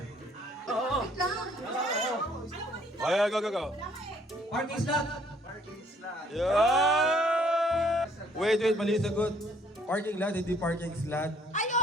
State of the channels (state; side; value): normal; both; correlation 0.62